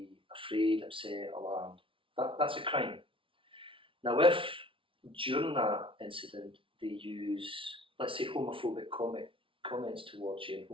afraid, upset, alarmed. That's a crime. Now, if during that incident they use, let's say, homophobic comments towards you,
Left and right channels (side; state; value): left; late; 0.25 ms